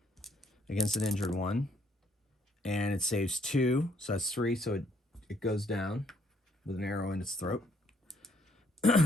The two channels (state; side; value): normal; both; correlation 0.67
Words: against an injured one. And it saves 2. So that's 3. So it goes down with an arrow in its throat.